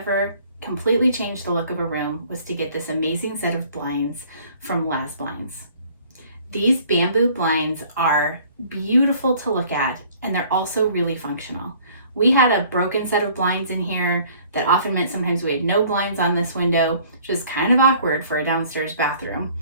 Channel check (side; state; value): both; inverted; correlation -0.55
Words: completely changed the look of a room was to get this amazing set of blinds from LazBlinds. These bamboo blinds are beautiful to look at, and they're also really functional. We had a broken set of blinds in here that often meant sometimes we had no blinds on this window, which is kind of awkward for a downstairs bathroom,